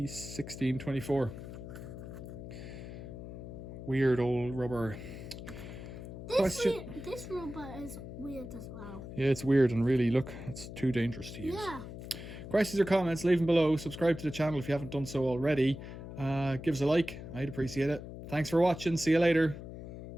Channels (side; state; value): left; noise; hum, 11 dB below the sound